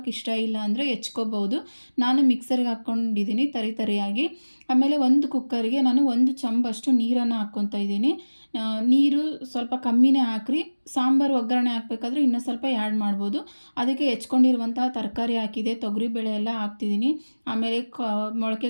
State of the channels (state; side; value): inverted; both; correlation -1.00